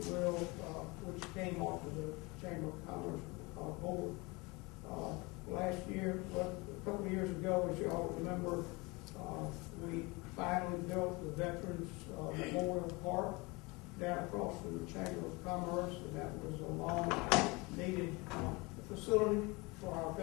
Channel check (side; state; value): right; quieter; 25.6 dB